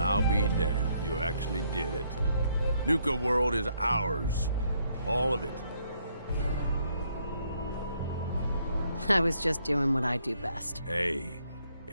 be damned. You actually did it. Nuka World is ours. All of it. I was just doing what I do best. Hey,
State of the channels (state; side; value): inverted; both; correlation -0.71